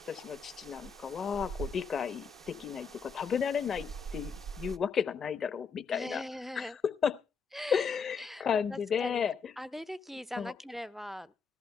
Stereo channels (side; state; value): right; quieter; 5.8 dB